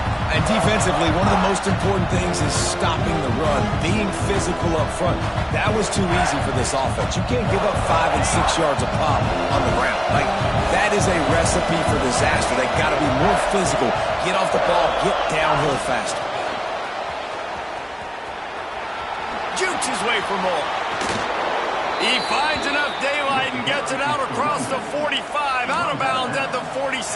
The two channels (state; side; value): identical; both; correlation 1.00